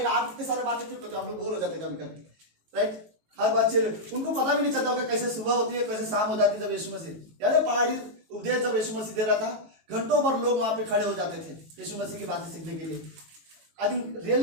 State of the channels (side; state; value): left; late; 18 ms